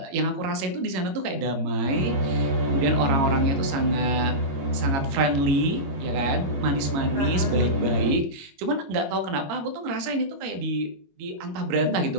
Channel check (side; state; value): left; late; 22 ms